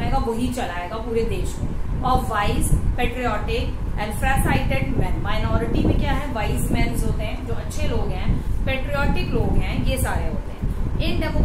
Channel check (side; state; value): both; identical; correlation 1.00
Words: वही चलाएगा पूरे देश को। Of wise, patriotic and farsighted man. Minority में क्या है? वाइज मैन होते हैं, जो अच्छे लोग हैं, पेट्रियोटिक लोग हैं, ये सारे होते हैं। In